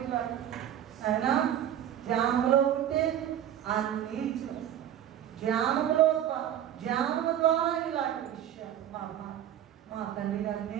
అయినా ధ్యానంలో ఉంటే అన్నీ ధ్యానము ద్వారా ఇలాంటి విషయాలు మా తండ్రి గారు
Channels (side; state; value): left; quieter; 10.8 dB